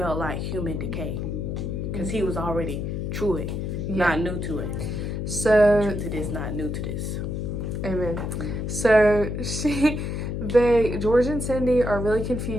like human decay because he was already true it, not new to it. So true to this, not new to this. Amen. So George and Cindy are really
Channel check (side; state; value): left; noise; hum, 3 dB below the sound